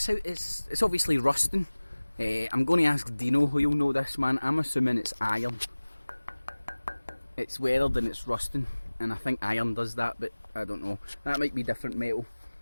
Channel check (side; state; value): both; inverted; correlation -1.00